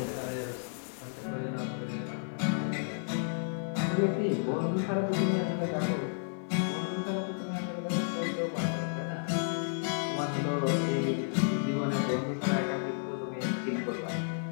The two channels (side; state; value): right; silent; 56 dB below the other